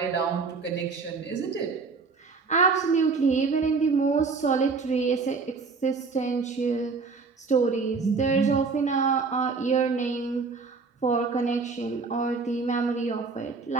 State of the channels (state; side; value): quieter; left; 4.6 dB